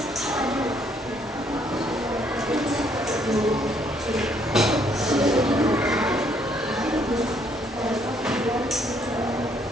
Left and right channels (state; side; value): normal; both; correlation 0.67